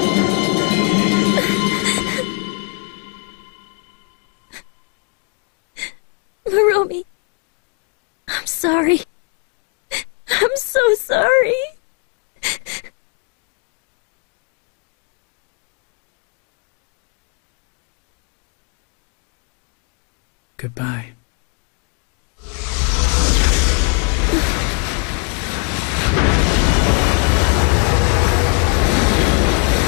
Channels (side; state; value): right; quieter; 34.9 dB